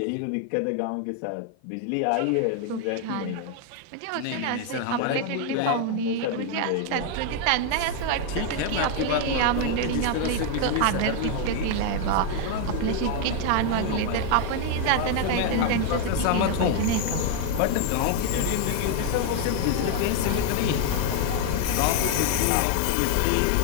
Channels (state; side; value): different; both; correlation 0.01